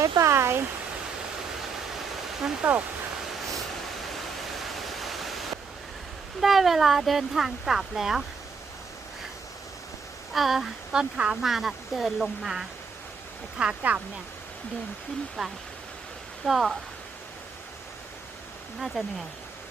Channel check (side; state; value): left; quieter; 5.2 dB